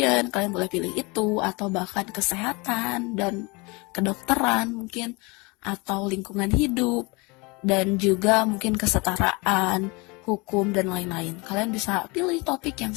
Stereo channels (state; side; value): quieter; right; 27.0 dB